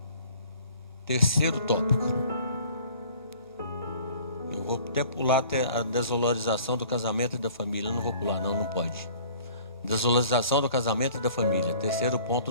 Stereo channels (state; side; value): inverted; both; correlation -0.51